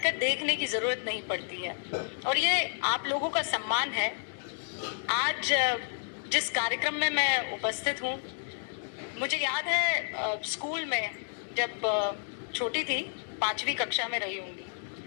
कर देखने की जरूरत नहीं पड़ती है। और ये आप लोगों का सम्मान है। आज जिस कार्यक्रम में मैं उपस्थित हूँ, मुझे याद है स्कूल में जब छोटी थी, 5वीं कक्षा में रही होंगी,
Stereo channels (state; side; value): silent; right; digital silence